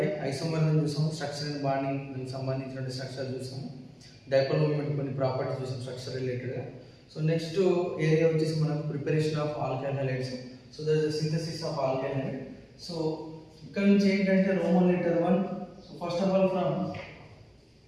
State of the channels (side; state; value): both; identical; correlation 1.00